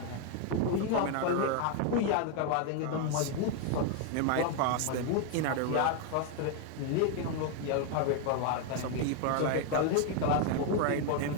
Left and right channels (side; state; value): both; different; correlation 0.01